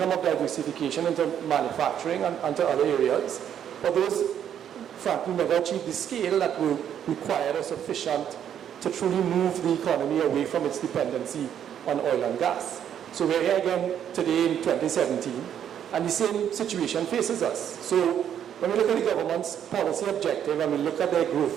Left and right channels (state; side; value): quieter; left; 9.4 dB